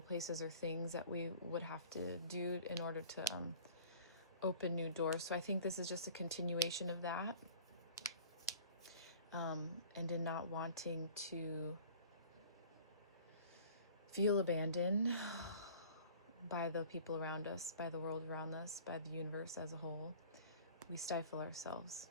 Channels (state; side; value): inverted; both; correlation -0.47